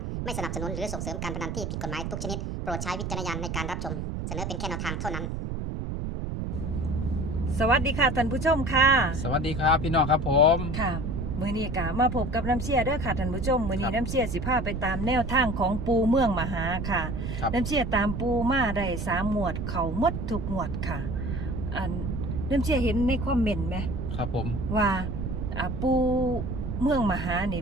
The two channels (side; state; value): right; noise; rumble, 4 dB below the sound